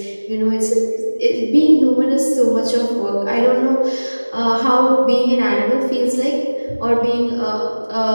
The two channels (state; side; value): inverted; both; correlation -1.00